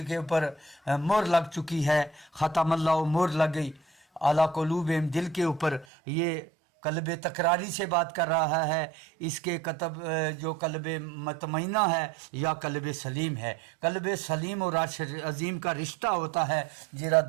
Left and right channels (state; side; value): drops out; left; at 5.9 s